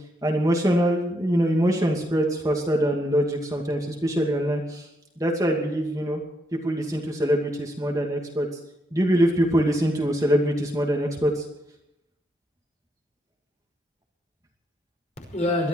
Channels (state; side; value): normal; both; correlation 0.77